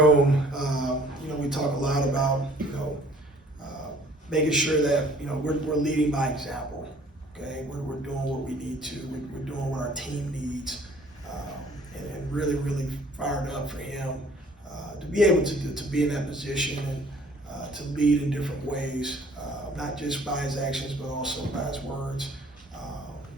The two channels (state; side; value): normal; both; correlation 0.55